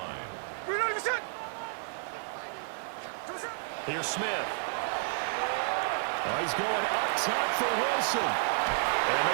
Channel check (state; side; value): silent; left; digital silence